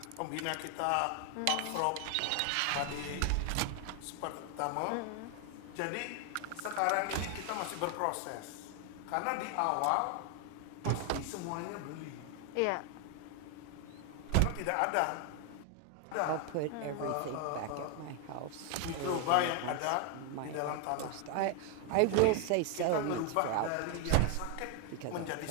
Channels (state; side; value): different; both; correlation 0.01